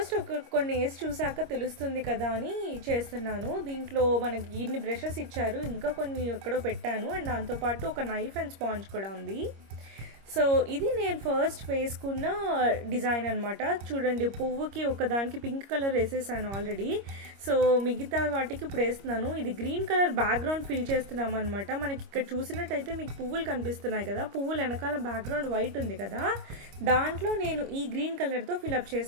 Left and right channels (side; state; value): left; late; 25 ms